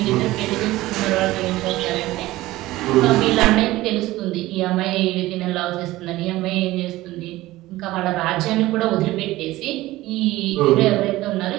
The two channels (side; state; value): left; quieter; 17.5 dB